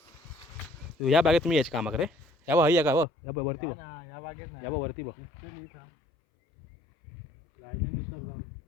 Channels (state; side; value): drops out; right; at 3.1 s